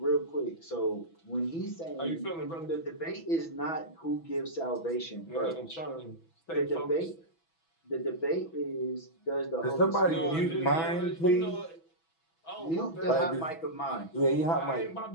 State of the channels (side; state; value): right; late; 6.1 ms